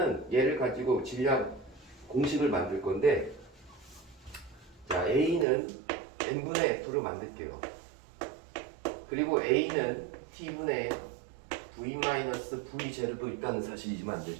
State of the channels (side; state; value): left; drops out; at 5.5 s